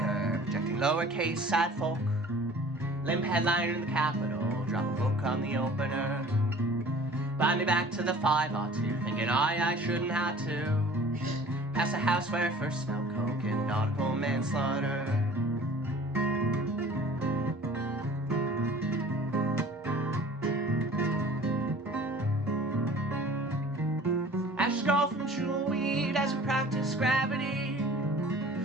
projecting lowercase sad folk. Limp headliner in the Capitol, drop a book on the opener. Buy me back to the 502, thinking I shouldn't have to. Past the house where I first smelled coke and nautical manslaughter. Ashes go from jewel weed as we practice gravity.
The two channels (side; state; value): both; normal; correlation 0.47